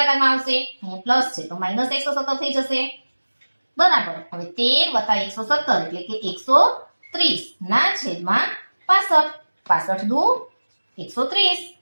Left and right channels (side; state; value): both; inverted; correlation -1.00